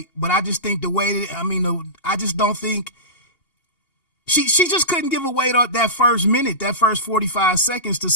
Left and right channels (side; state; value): right; late; 2.8 ms